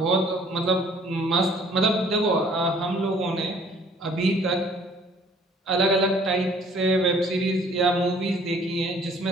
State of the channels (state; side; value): normal; both; correlation 0.56